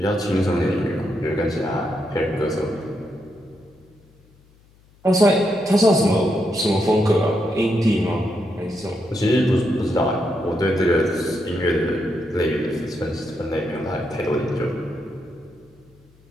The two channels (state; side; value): noise; left; hum, 30 dB below the sound